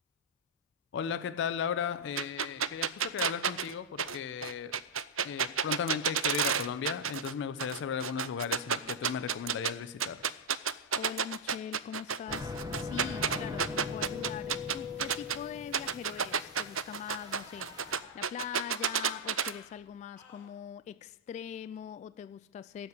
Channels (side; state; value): both; normal; correlation -0.03